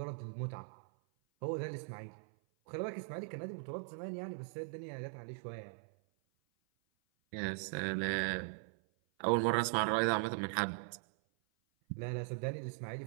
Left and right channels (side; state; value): left; silent; 51 dB below the other